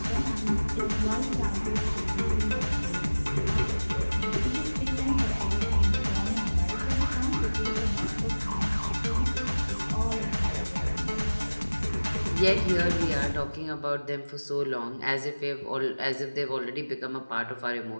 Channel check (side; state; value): both; inverted; correlation -1.00